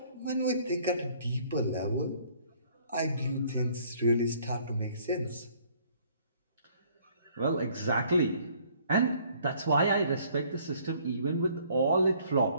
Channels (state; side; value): inverted; both; correlation -0.60